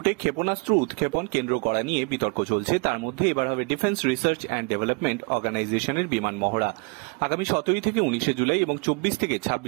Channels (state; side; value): quieter; left; 32.0 dB